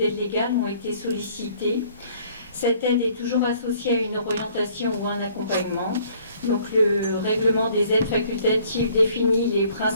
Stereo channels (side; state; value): both; inverted; correlation -0.59